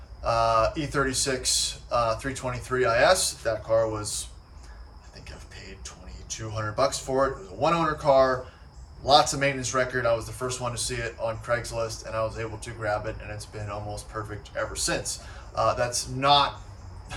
E36 323 IS, that car was, I think I've paid $2,200 for it. It was a one owner car, lots of maintenance record. I was the first one to see it on Craigslist, and I was able to grab it, and it's been almost perfect ever since. That's not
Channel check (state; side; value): identical; both; correlation 1.00